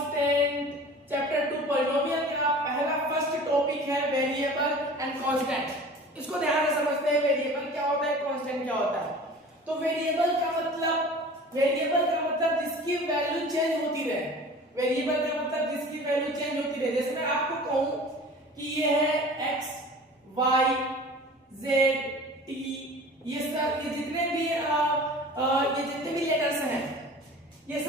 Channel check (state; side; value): normal; both; correlation 0.41